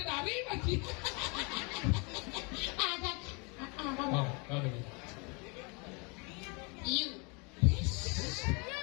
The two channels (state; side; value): quieter; right; 31.3 dB